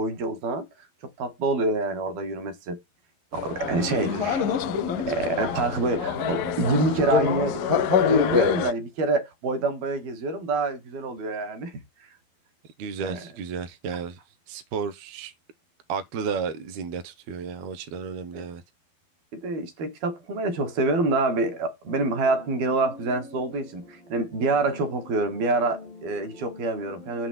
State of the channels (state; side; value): late; left; 12 ms